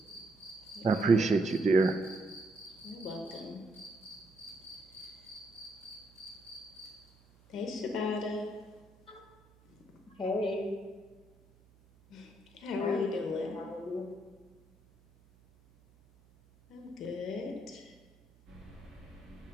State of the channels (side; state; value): right; noise; hum, 28 dB below the sound